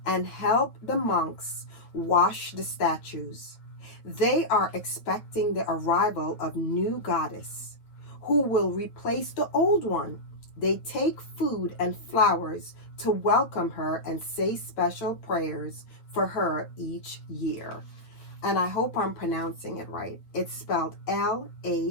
and help the monks wash the statues. They are expecting the arrival of new goddess who will replace the old one. They take food and flowers to welcome her and say special prayers for her each year. And I hope I'm pronouncing it right. It's spelled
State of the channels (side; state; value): right; late; 8.8 ms